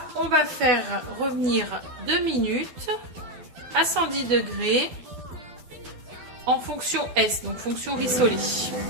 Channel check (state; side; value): late; left; 12 ms